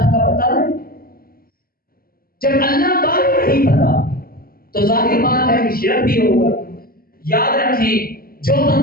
کا پتہ ہے؟ جب اللہ کا نہیں پتا تو ظاہر بات ہے کہ شرک بھی ہوگا۔ یاد رکھیں جو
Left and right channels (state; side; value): late; right; 0.43 ms